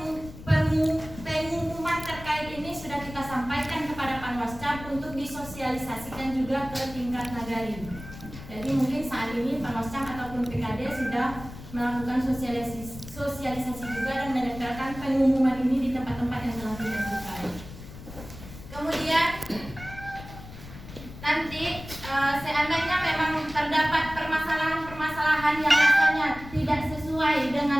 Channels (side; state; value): left; noise; rumble, 14 dB below the sound